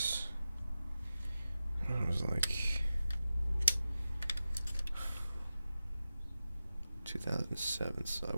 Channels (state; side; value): inverted; both; correlation -0.93